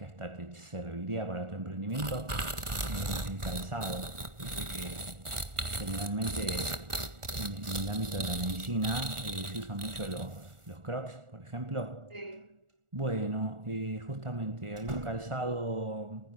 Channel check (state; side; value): late; left; 1.4 ms